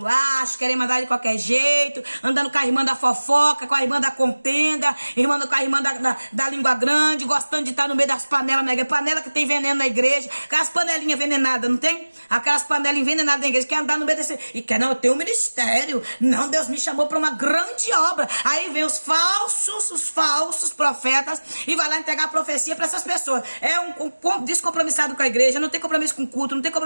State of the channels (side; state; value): both; inverted; correlation -1.00